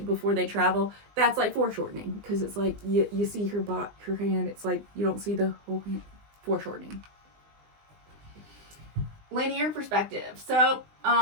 before they travel. That's like foreshortening, because it's like you see her hand. It's like you don't see the whole hand. Foreshortening. Linear perspective. So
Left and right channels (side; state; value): left; late; 20 ms